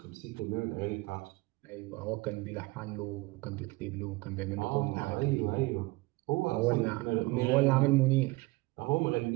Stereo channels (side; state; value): left; quieter; 22.9 dB